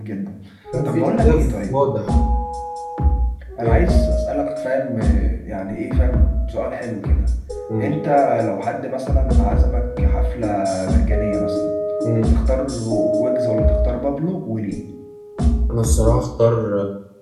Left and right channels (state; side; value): identical; both; correlation 1.00